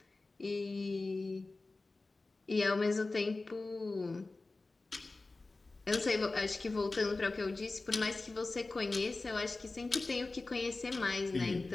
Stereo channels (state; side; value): quieter; right; 3.4 dB